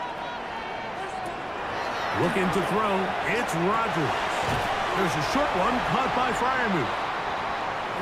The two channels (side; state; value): both; identical; correlation 1.00